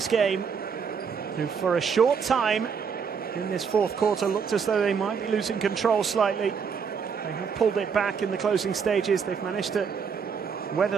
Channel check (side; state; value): left; quieter; 6.2 dB